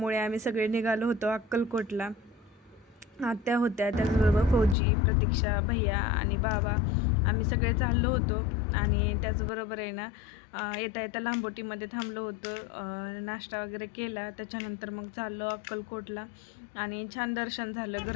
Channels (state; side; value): drops out; right; at 4.8 s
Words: आम्ही सगळे निघालो होतो अक्कलकोटला. आत्या होत्या, त्याचबरोबर फौजी, प्रतीक्षा, भैया आणि बाबा, आम्ही सगळे चाललो होतो. आणि त्याचबरोबर आहे ना येता येता लांबोटीमध्ये थांबलो होतो, नाश्ता वगैरे केला. त्याच्यानंतर मग चाललो अक्कलकोटला, आणि छान दर्शन झालं,